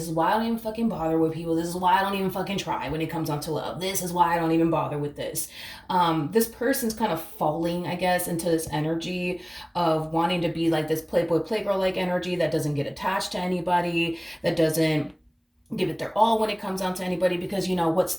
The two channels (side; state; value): both; identical; correlation 1.00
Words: is why I don't even fucking bother with people. This is why I don't even fucking try when it comes down to love. This is why I don't even bother with this. This person's kind of falling, I guess, into this energy of wanting to be like this playboy, playgirl like energy that doesn't get attached to anybody, that doesn't give it their all when it comes down to anybody, because you know, what's